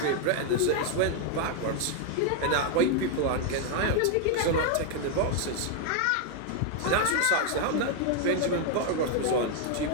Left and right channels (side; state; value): both; different; correlation 0.00